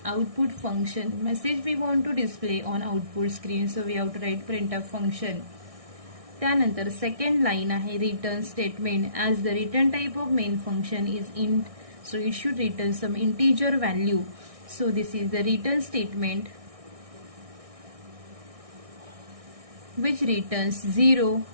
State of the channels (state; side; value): late; left; 1.6 ms